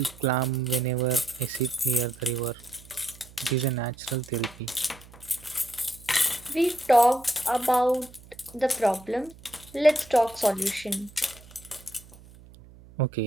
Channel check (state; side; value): noise; right; hum, 22 dB below the sound